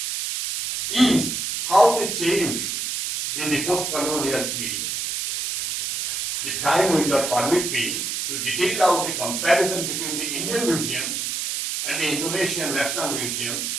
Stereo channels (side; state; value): right; noise; hiss, 2 dB below the sound